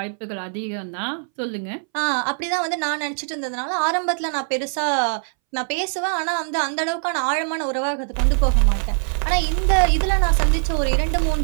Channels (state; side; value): silent; left; 63 dB below the other